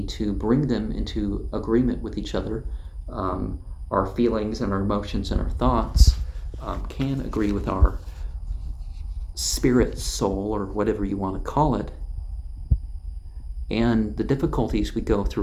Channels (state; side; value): identical; both; correlation 1.00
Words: to bring them into agreement with each other. Our feelings and our emotions and our thoughts can agree with our spirit, soul, or whatever you want to call it. And the difficulties we go